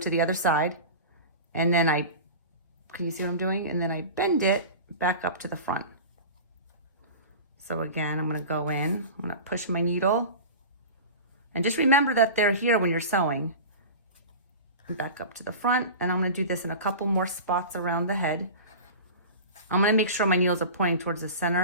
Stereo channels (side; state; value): both; inverted; correlation -0.32